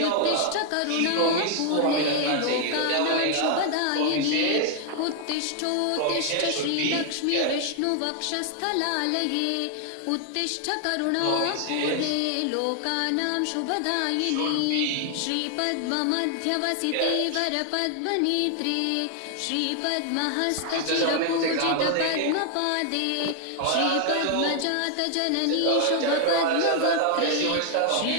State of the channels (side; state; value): both; different; correlation 0.00